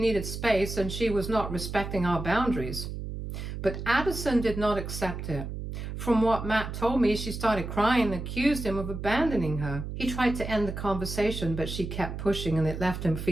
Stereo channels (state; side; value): noise; right; hum, 7 dB below the sound